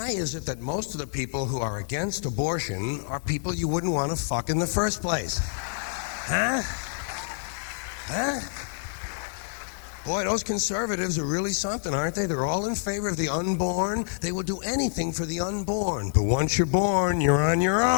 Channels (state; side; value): silent; right; digital silence